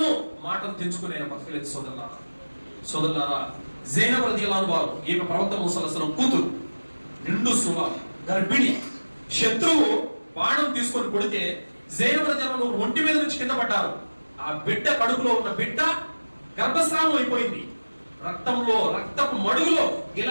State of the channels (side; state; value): both; inverted; correlation -1.00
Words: మాటలు తెంచుకునే బతకలేదు. సోదరులారా, జైనబ్ రలియల్లాహు అన్హా వారు, ఈమె ప్రవక్త మూసా అలైహిస్సలాం కూతురు, నిండు సువ, గర్భిణి. శత్రువు బాణం తీసుకొని కొడితే జైనబ్ రలియల్లాహు అన్హా ఒంటి మీద నుంచి కింద పడ్డారు. ఆ బిడ్డ కడుపులో ఉన్న బిడ్డ గర్భస్రావం అయిపోయింది. రక్తంలో, రక్తపు మడుగులో